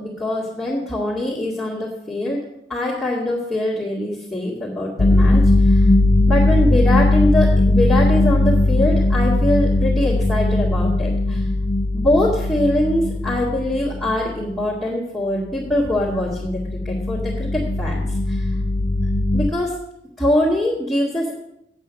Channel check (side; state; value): both; normal; correlation 0.86